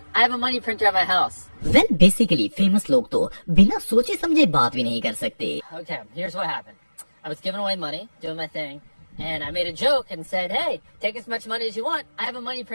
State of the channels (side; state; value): both; inverted; correlation -1.00